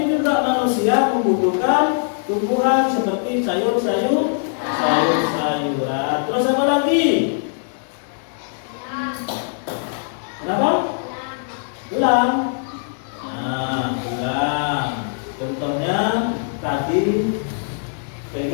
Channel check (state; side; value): silent; right; 62 dB below the other